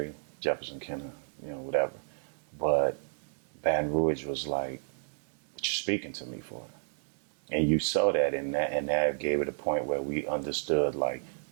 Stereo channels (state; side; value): silent; left; digital silence